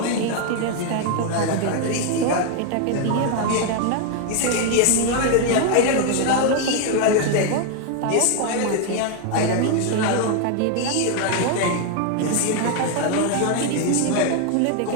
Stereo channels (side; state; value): both; different; correlation 0.01